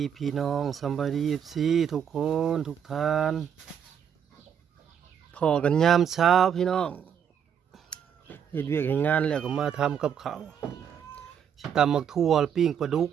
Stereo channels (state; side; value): quieter; left; 8.3 dB